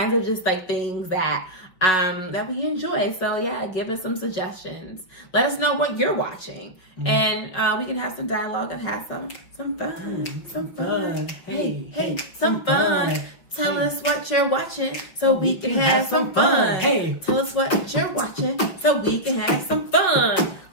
of just, like, things that we enjoy. So yeah, give us some suggestions. Let us know what you're watching, and we can have some dialogue and have some fun. Some fun. Hey, some fun. Tell us what you're watching so we can have some fun. Hey, tell us what you're watching so we can have some fun.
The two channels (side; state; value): right; late; 5.8 ms